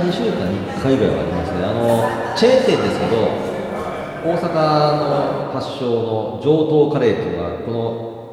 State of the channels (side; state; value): both; identical; correlation 1.00